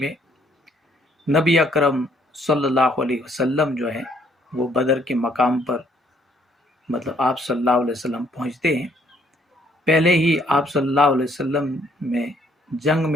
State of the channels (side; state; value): both; normal; correlation 0.66